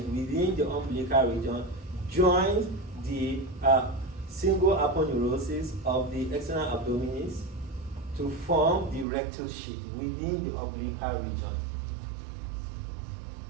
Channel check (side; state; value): left; drops out; at 9.1 s